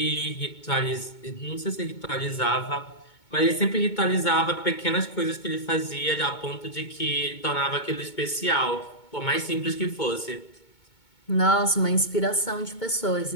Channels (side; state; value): right; late; 2.2 ms